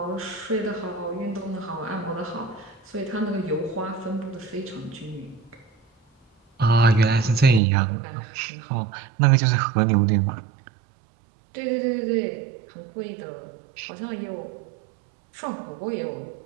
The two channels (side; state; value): left; drops out; at 7.6 s